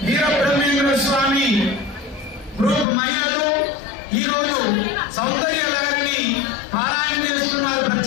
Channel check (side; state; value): right; drops out; at 2.9 s